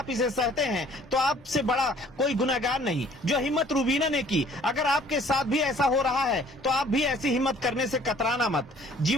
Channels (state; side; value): normal; both; correlation 0.56